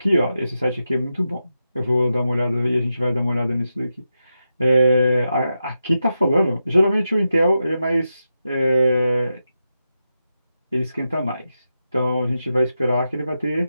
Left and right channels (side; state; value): both; inverted; correlation -0.88